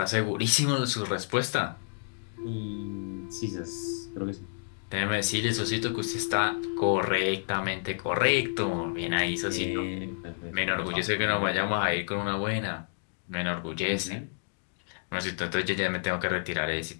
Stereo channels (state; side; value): silent; right; digital silence